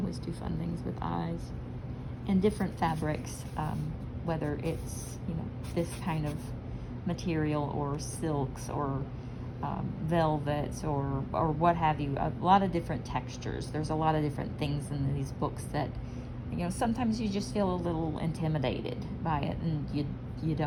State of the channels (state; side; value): identical; both; correlation 1.00